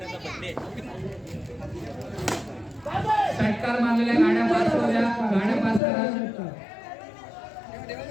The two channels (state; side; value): drops out; right; at 5.8 s